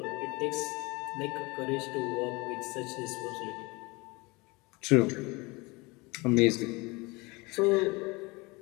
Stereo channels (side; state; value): right; quieter; 25.3 dB